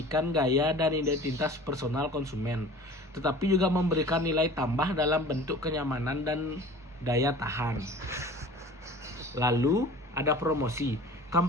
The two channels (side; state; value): both; normal; correlation 0.43